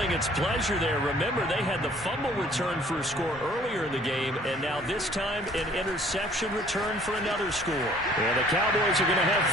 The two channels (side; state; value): both; normal; correlation 0.56